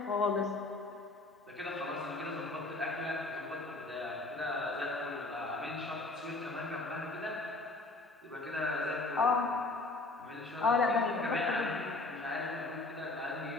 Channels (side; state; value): right; quieter; 3.2 dB